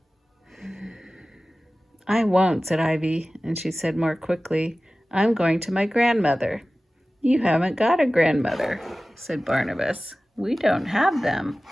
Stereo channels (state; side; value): normal; both; correlation 0.96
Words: I won't, said Ivy, and she said more quickly, I'm going to my grandmother. You haven't got a grandmother, said Barnabas. We don't have them.